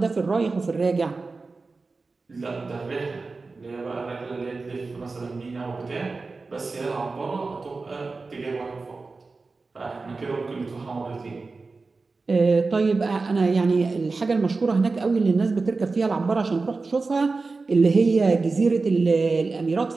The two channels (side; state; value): left; quieter; 3.9 dB